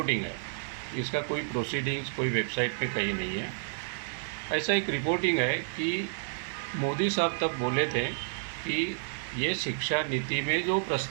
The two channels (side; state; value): left; silent; digital silence